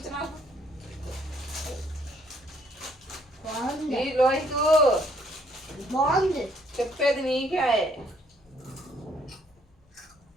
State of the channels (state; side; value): normal; both; correlation 0.66